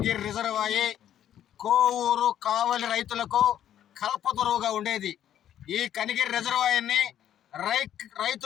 రిజర్వాయర్ కోవూరు కావలి రైతులకు కల్పతరువుగా ఉండేది. ఈ కనిగిరి రిజర్వాయర్ని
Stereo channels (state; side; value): quieter; right; 10.8 dB